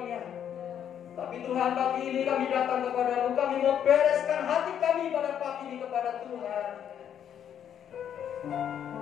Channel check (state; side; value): quieter; right; 9.3 dB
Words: Tapi Tuhan, pagi ini kami datang kepada-Mu. Kami mau bereskan hati kami pada pagi ini kepada Tuhan.